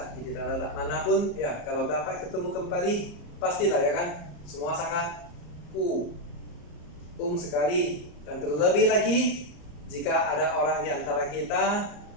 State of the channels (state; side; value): late; right; 34 ms